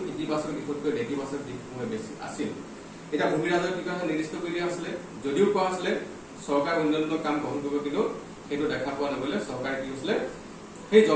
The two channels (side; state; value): both; identical; correlation 1.00